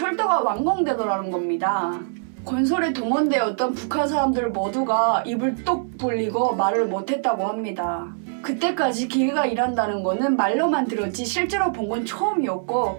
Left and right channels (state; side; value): silent; left; 60 dB below the other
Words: 완공되더라는 겁니다. 건설에 동원되었던 북한 사람들 모두가 입을 뚝 벌리고 말을 못했다고 합니다. 그때까지 기계가 일한다는 거는 말로만 들었지 실제로 본 건 처음이었고